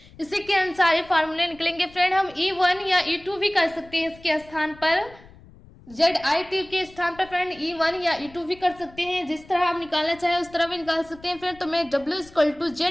इसी के अनुसार ये फार्मूले निकलेंगे फ्रेंड। हम E1 या E2 भी कर सकते हैं इसके स्थान पर, ZIT के स्थान पर फ्रेंड E1 या E2 भी कर सकते हैं। जिस तरह आप निकालना चाहे उस तरह भी निकाल सकते हैं फ्रेंड। तो मैं W इक्वल टू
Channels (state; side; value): noise; left; rumble, 23 dB below the sound